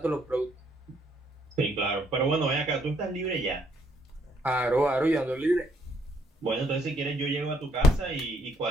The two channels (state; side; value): normal; both; correlation 0.70